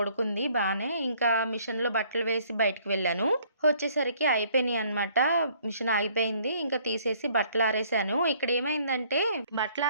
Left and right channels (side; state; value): both; inverted; correlation -0.61